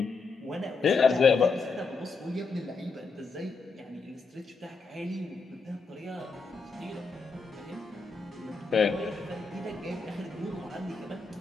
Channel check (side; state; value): right; quieter; 4.3 dB